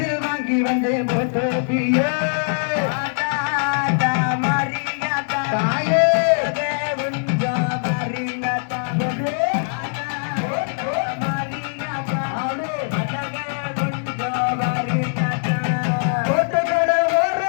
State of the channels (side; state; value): right; silent; digital silence